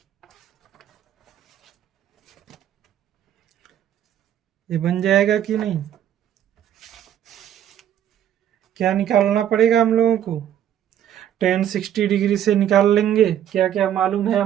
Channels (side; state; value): left; quieter; 10.5 dB